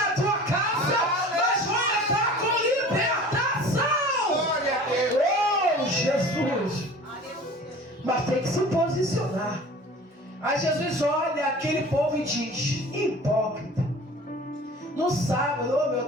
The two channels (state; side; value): normal; both; correlation 0.42